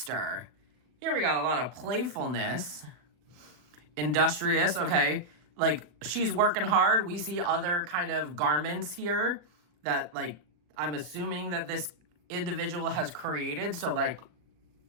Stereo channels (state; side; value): late; left; 39 ms